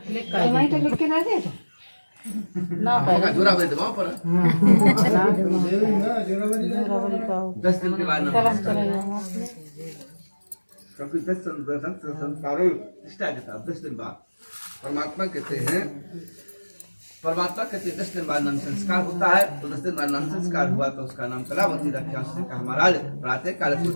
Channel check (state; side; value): inverted; both; correlation -1.00